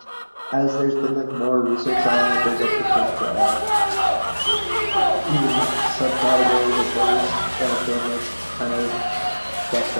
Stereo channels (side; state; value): both; inverted; correlation -1.00